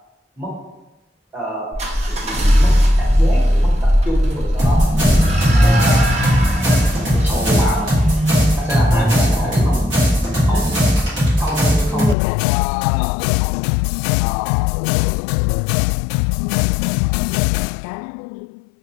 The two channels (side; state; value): right; drops out; at 12.2 s